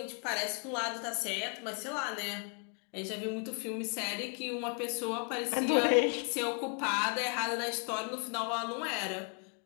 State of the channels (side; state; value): right; quieter; 39.3 dB